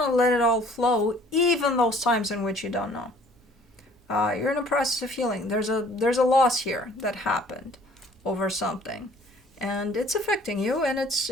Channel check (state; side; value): normal; both; correlation 0.55